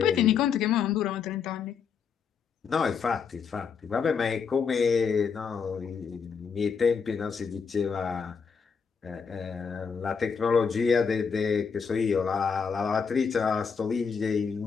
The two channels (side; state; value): right; quieter; 6.1 dB